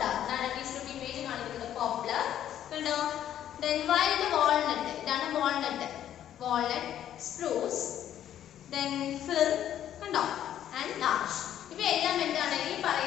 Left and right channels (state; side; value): quieter; right; 10.9 dB